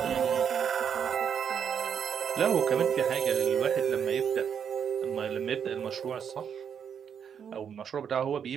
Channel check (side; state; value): left; quieter; 7.8 dB